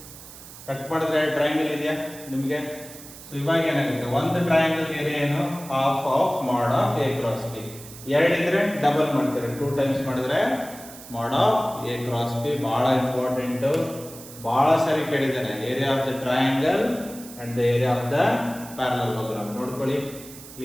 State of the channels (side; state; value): right; noise; hiss, 16 dB below the sound